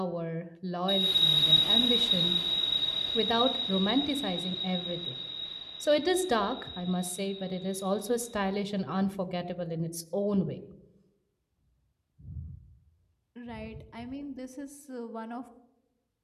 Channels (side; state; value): both; identical; correlation 1.00